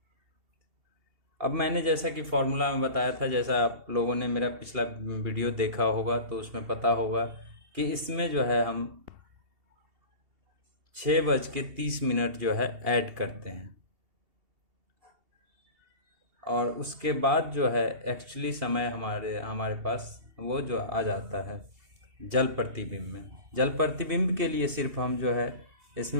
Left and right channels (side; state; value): left; late; 2.8 ms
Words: अब मैंने जैसा कि फॉर्मूला में बताया था, जैसा आप लोगों ने मेरा पिछला वीडियो देखा होगा तो उसमें पता होगा कि इसमें जो है हम 6:30 जो है ऐड करते हैं, और उसके बाद जो है एक्चुअली समय हमारे पास वो जो आ जाता है जल प्रतिबिंब में। जल प्रतिबिंब के लिए सिर्फ हम जो है